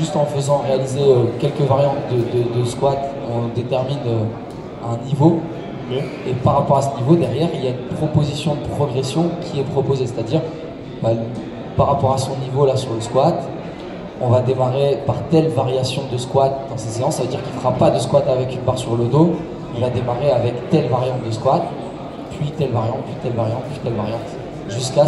en faisant réaliser quelques variantes de squat, on détermine un niveau. Okay. Et par rapport à ce niveau, derrière, il y a une proposition de progression qui est proposée. C'est-à-dire, par rapport à son niveau là sur le squat, on va démarrer par telle variation de squat dans ces séances. Ça veut dire qu'il ne fera pas de squat avec une barre sur le dos. Il va démarrer avec telle variante de squat, puis telle variante, puis telle variante, puis telle variante, jusqu'à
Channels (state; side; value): identical; both; correlation 1.00